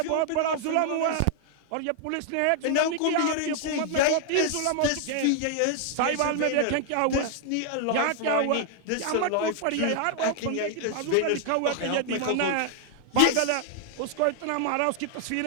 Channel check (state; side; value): different; both; correlation -0.01